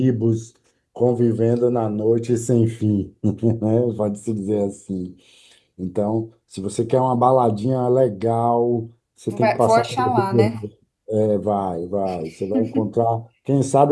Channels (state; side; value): identical; both; correlation 1.00